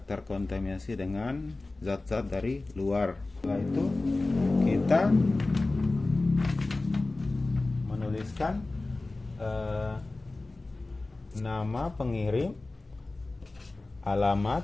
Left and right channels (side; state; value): right; quieter; 3.2 dB